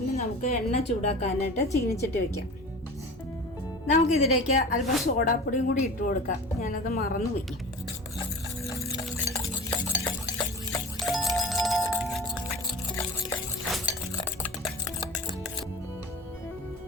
നമുക്ക് എണ്ണ ചൂടാക്കാനായിട്ട് ചീനിച്ചട്ടി വയ്ക്കാം. നമുക്കിതിലേക്ക് അല്പം സോഡാപ്പൊടിയും കൂടി ഇട്ട് കൊടുക്കാം. ഞാനത് മറന്നുപോയി.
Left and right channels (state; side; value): normal; both; correlation 0.36